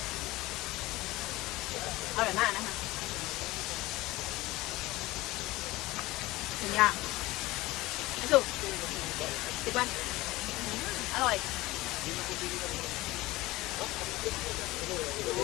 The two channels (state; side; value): quieter; right; 19.5 dB